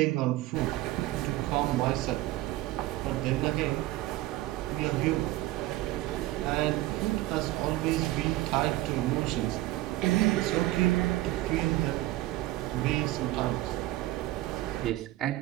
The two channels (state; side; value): quieter; left; 16.9 dB